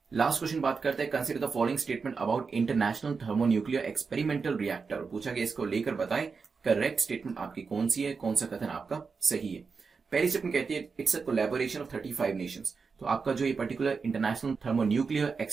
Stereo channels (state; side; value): quieter; left; 5.0 dB